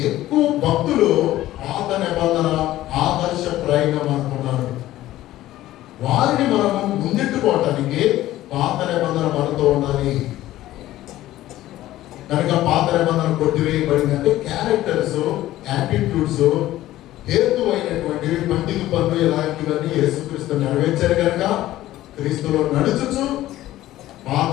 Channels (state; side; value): quieter; right; 15.0 dB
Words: ఎక్కువ భక్తులు పాత నిబంధన ఆదర్శప్రాయంగా మనకున్నారు. వారిని మనము ముందెట్టుకోవటానికి పాత నిబంధన మనతో ఉండాలి. కనుక పాత నిబంధన కొట్టివేయబడింది అంటే క్యారెక్టర్స్, యాటిట్యూడ్స్, హేతువైనటువంటివి, పండితు పనులు ఇలాంటివన్నీ యేసుక్రీస్తు నెరవేర్చారు. కనుక క్రీస్తులో నడుచుచు